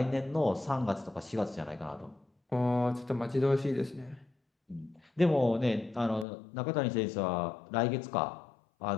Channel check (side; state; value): right; drops out; at 6.2 s